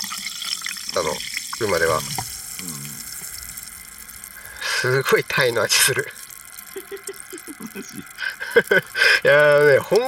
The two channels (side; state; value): both; identical; correlation 1.00